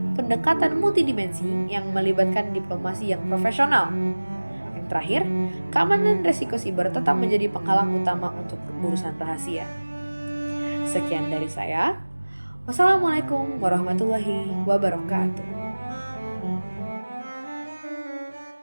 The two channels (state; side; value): inverted; both; correlation -1.00